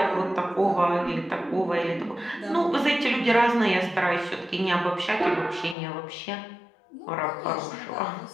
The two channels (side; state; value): right; drops out; at 5.8 s